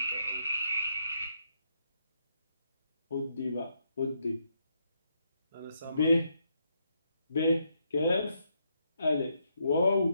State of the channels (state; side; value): inverted; both; correlation -0.78